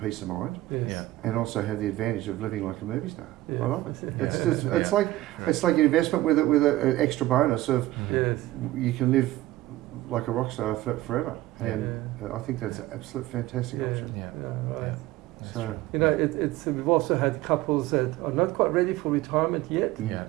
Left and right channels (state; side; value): quieter; left; 16.6 dB